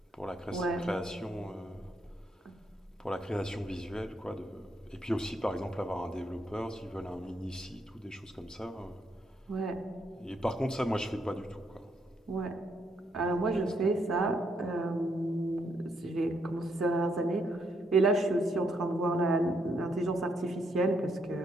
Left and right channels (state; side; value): normal; both; correlation 0.75